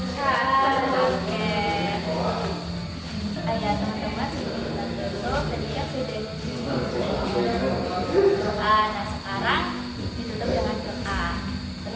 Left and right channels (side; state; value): both; identical; correlation 1.00